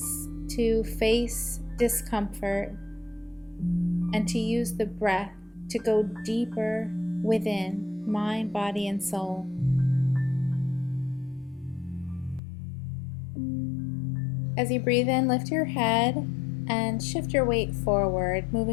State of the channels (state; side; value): drops out; right; at 12.4 s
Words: to face discomfort, and to use the breath to go deeper within mind, body, and soul. As you breathe in, lift your head and shift your weight forward,